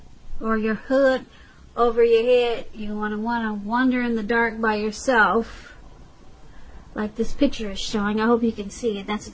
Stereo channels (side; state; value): both; identical; correlation 1.00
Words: or your hood over your head. You want to wander in the dark by yourself, like this picture is showing. I hope you can see it. That's